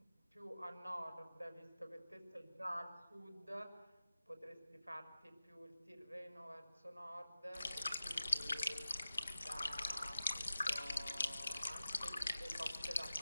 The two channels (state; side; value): inverted; both; correlation -0.95